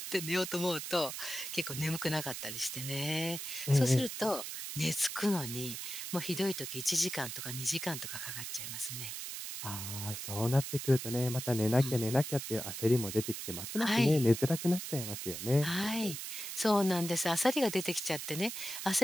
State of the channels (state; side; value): noise; right; hiss, 7 dB below the sound